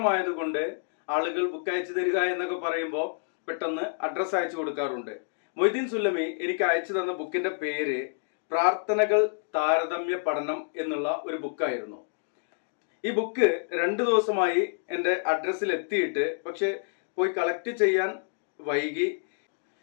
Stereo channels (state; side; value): silent; right; digital silence